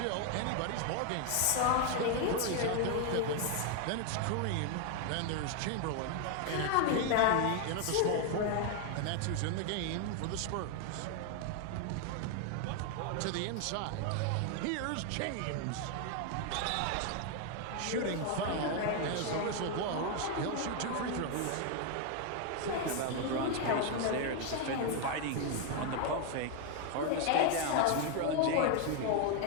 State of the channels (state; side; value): different; both; correlation 0.01